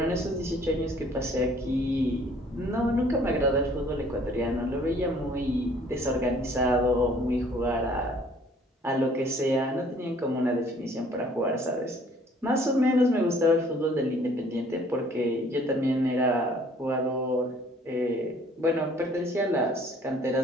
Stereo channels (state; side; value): normal; both; correlation 0.57